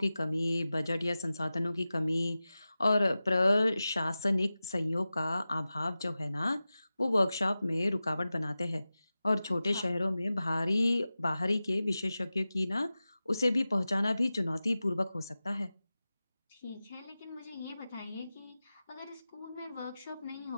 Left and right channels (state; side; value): inverted; both; correlation -0.95